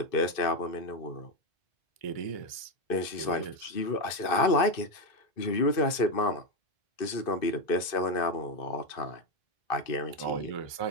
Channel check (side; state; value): right; late; 2.5 ms